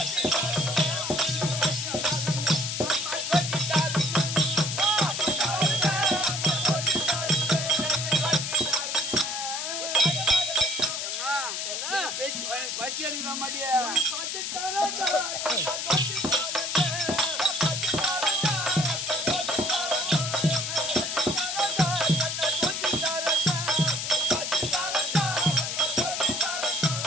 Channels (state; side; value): noise; left; hiss, 3 dB below the sound